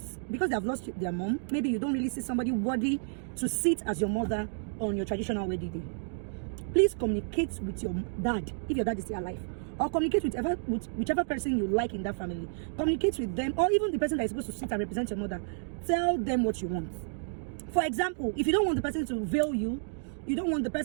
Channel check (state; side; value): silent; left; digital silence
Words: because they have lost their mom, maybe you don't really see somebody worthy to sit as your mother on your traditional wedding day. Please communicate with your dad, if your dad is still alive, or communicate with whichever person you like in that family. Communicate with them, or even the person that is supposed to sit and represent your mother. Tell them what you want. For example, if you don't want the person to veil you, you don't want the